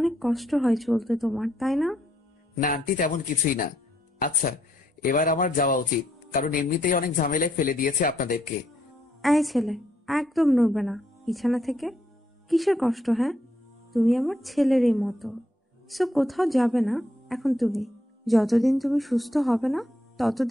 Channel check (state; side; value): normal; both; correlation 0.74